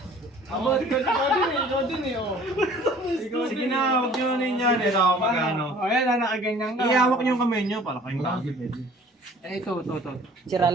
Ikaw din eh, oh. Sige na, huwag nyo na yan. Ito ako magano. Ayan, nakaganyan ka. Ihawak nyo yung kamay nyo para kayong gago. Ito. Sira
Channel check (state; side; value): normal; both; correlation 0.51